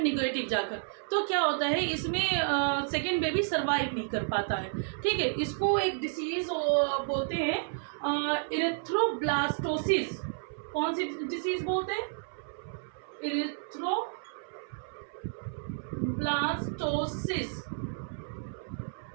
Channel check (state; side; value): silent; left; 57 dB below the other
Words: नेगेटिव जाकर। तो क्या होता है, इसमें सेकेंड बेबी सर्वाइव नहीं कर पाता है। ठीक है, इसको एक डिसीज बोलते हैं इरिथ्रोब्लास्टोसिस। कौन सी डिसीज बोलते हैं, इरिथ्रोब्लास्टोसिस।